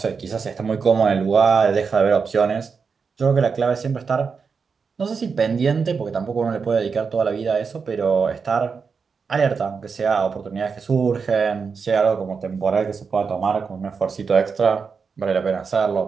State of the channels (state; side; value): quieter; left; 5.5 dB